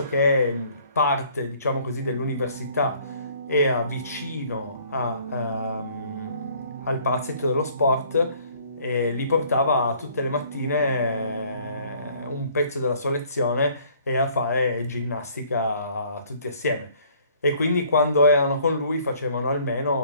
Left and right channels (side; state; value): both; inverted; correlation -0.58